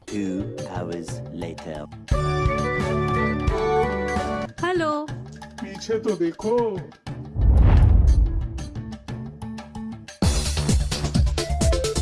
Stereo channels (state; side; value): identical; both; correlation 1.00